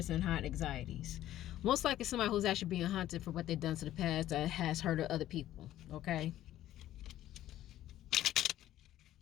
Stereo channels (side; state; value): right; quieter; 13.3 dB